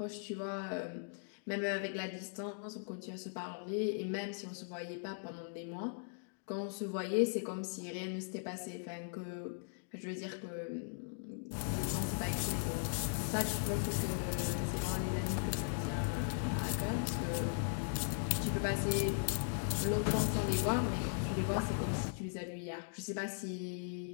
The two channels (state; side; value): silent; right; digital silence